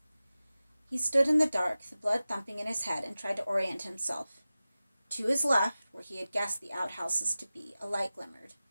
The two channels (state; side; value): inverted; both; correlation -0.96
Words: He stood in the dark, the blood thumping in his head, and tried to orient himself. To his left, where he had guessed the outhouses to be, a light glimmered.